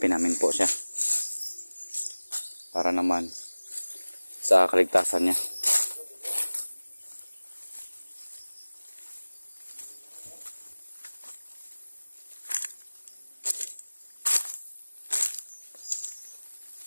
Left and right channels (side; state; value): both; inverted; correlation -1.00